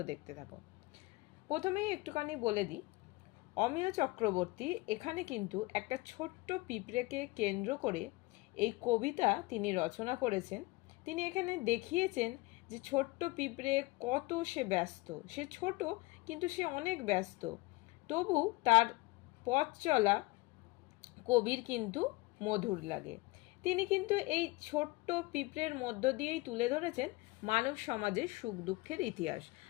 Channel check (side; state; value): right; quieter; 22.3 dB